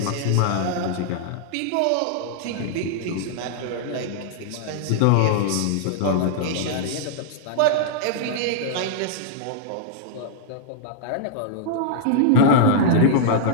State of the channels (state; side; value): different; both; correlation -0.02